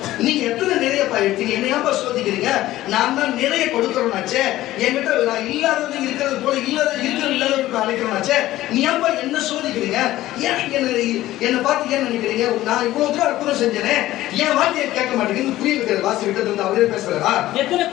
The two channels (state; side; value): quieter; right; 15.4 dB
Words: நீங்க எத்தனை நிறைய எடுத்தீங்க, என்னையாப்பா சோதிக்கிறீங்க? நான் தான் நிறைய கொடுக்கறோம்னாச்சே. என்கிட்ட நான் இல்லாதது இருக்கிறது போல இல்லாதவருக்கு அழைக்கிறோம்னாச்சே. நீ ஏன்பா என்ன சோதிக்கிறீங்க? ஏன் என்ன பார்த்து ஏன் நினைக்கிறீங்க? நான் இவ்வளவு தூரம் அற்புதம் செஞ்சேனே, என் வார்த்தையை கேட்க மாட்டேங்குது. புரிய வைக்கிறது வாசி விட்டது வந்து அவரே பேசுறாரா?